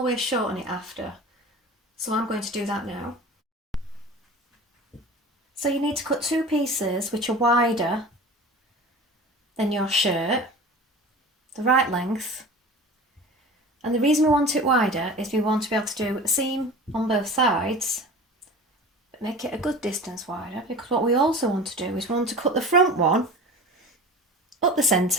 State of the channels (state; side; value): normal; both; correlation 0.37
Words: shorten it after. So I'm going to do that now. So you need to cut 2 pieces which are wider than your shirt, the right length. And the reason we want it wider is we want to be able to do a seam on both sides, but make it a good distance wider, because what we also want to do is we want to cut the front one up the